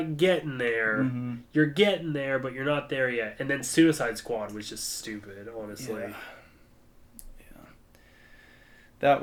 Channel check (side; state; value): both; identical; correlation 1.00